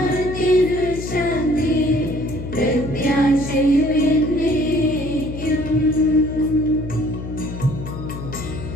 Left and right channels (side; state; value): left; noise; hum, 8 dB below the sound